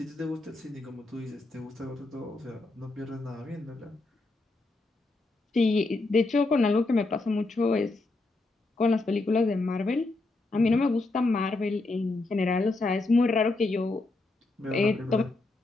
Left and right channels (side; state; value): right; quieter; 3.2 dB